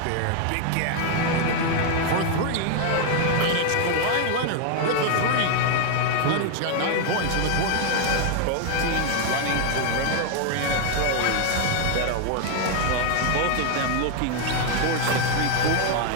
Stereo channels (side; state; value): both; different; correlation 0.00